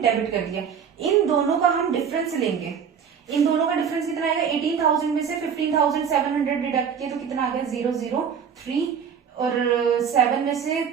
डेबिट कर दिया। इन दोनों का हम डिफरेंस लेंगे। इन दोनों का डिफरेंस कितना आएगा, 18000 में से 15700 डिडक्ट किया तो कितना आ गया 003, और 7 में से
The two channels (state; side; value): quieter; left; 7.3 dB